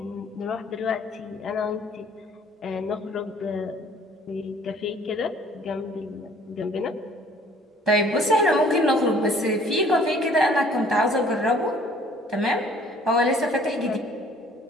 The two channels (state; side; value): normal; both; correlation 0.55